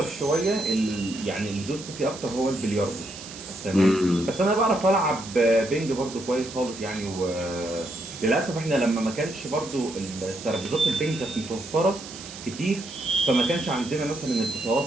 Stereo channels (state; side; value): noise; right; hiss, 14 dB below the sound